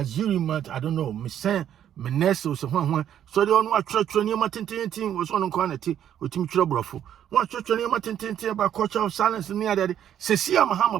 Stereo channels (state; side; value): quieter; left; 10.2 dB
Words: I don't know, me say Meneso so so they on what church near Matin was on quantity with Tim Troubleful. What church near Matin about culture of silence near that. Cecilia